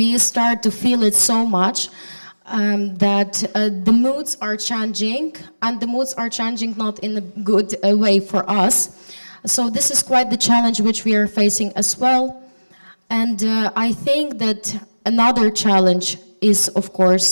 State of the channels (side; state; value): both; inverted; correlation -1.00